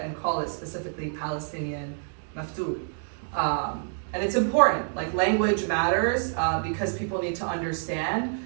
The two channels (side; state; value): left; silent; digital silence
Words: and call it specifically Palestinian maftoud. And it's important, like language matters, because people need to understand